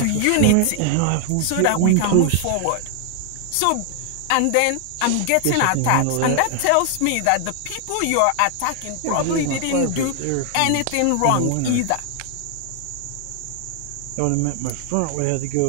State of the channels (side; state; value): both; different; correlation 0.00